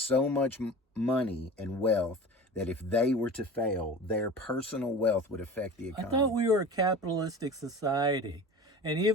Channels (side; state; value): both; normal; correlation 0.36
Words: much money and wealth that if they were to fail, their personal wealth would affect the economy. I thought we were a capitalistic society. And